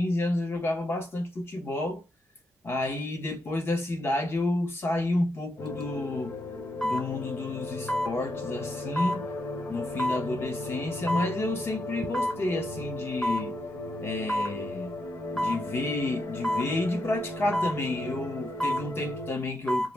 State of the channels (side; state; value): both; normal; correlation 0.82